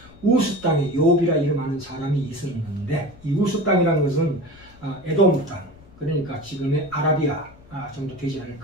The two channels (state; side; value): noise; left; rumble, 23 dB below the sound